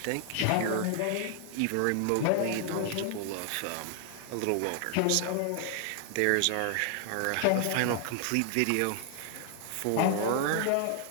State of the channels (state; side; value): different; both; correlation 0.00